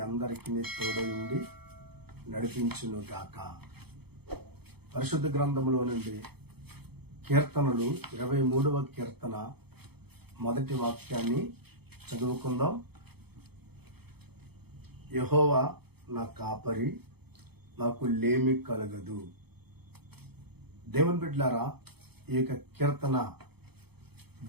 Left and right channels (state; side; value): late; left; 0.97 ms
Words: అందరికీ తోడై ఉండి నడిపించునుగాక. పరిశుద్ధ గ్రంథములో నుండి కీర్తనలు 23వ కీర్తన మొదటి వాక్యాన్ని చదువుకుందాం. యెహోవా నా కాపరి, నాకు లేమి కలగదు. దేవుని బిడ్డలారా, ఈ యొక్క కీర్తన